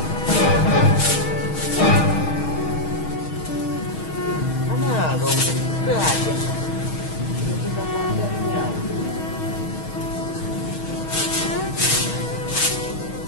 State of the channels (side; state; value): right; late; 6.3 ms